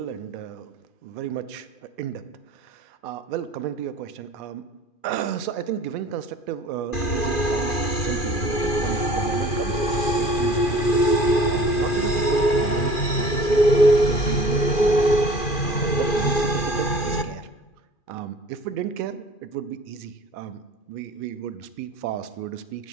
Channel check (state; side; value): late; right; 2.4 ms